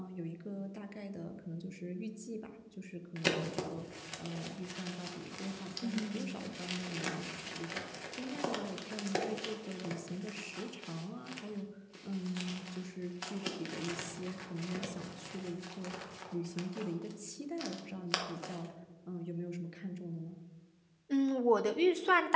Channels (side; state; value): both; identical; correlation 1.00